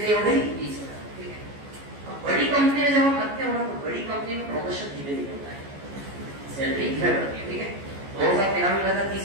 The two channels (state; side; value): late; left; 14 ms